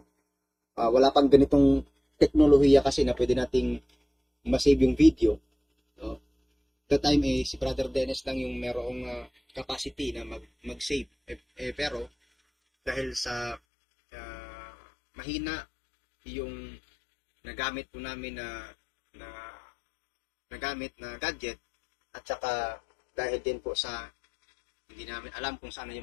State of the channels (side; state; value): right; drops out; at 13.6 s